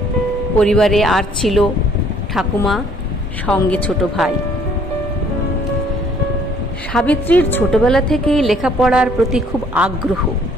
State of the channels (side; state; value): both; normal; correlation 0.61